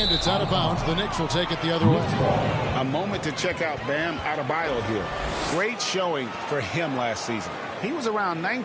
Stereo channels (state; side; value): identical; both; correlation 1.00